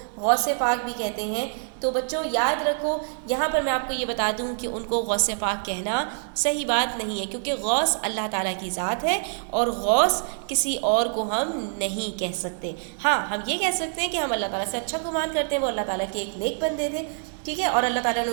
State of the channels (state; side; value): silent; left; digital silence